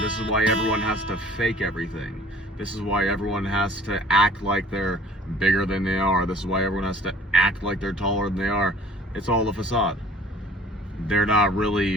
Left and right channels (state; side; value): normal; both; correlation 0.51